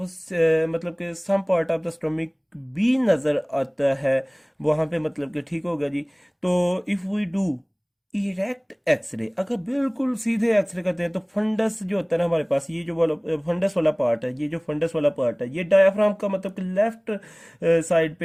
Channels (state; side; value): identical; both; correlation 1.00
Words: मतलब कि some part of the stomach भी नजर आता है वहां पे, मतलब कि ठीक होगा जी। तो if we do erect x-ray, अगर बिल्कुल सीधे एक्सरे करते हैं तो फंडस जो होता है ना हमारे पास, ये जो वाला फंडस वाला पार्ट है, ये जो फंडस वाला पार्ट है ये डायाफ्राम का मतलब कि लेफ्ट साइड